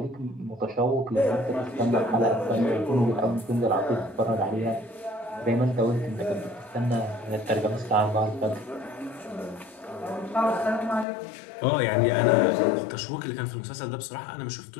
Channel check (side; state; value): right; drops out; at 11.1 s